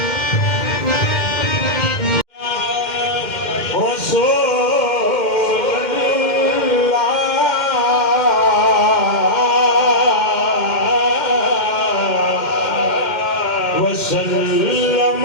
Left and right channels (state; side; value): late; right; 2.1 ms